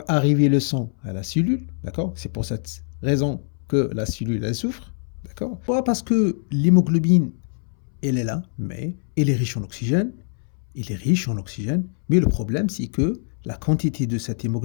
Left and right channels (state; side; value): silent; right; 63 dB below the other